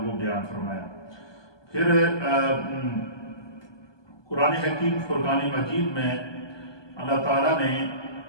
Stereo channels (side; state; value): right; late; 1.2 ms